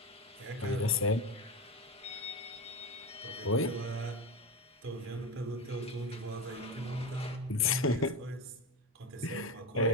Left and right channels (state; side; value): normal; both; correlation 0.19